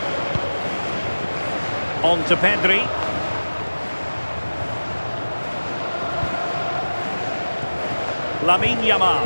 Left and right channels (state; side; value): inverted; both; correlation -1.00